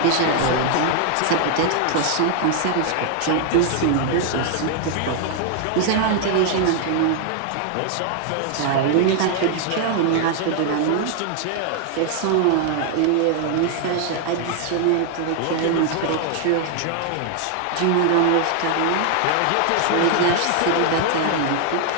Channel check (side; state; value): both; different; correlation 0.00